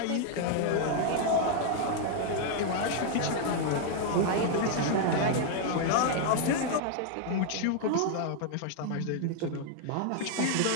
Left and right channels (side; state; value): both; different; correlation 0.00